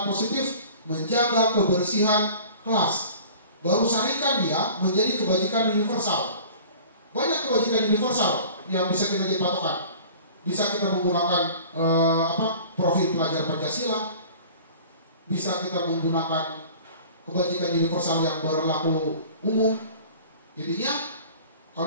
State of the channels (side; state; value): both; inverted; correlation -0.44